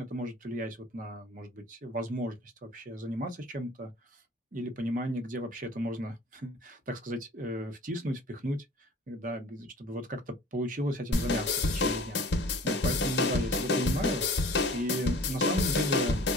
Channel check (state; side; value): normal; both; correlation 0.46